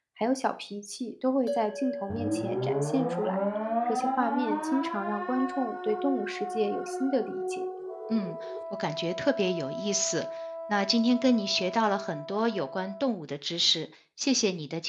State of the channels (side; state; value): both; identical; correlation 1.00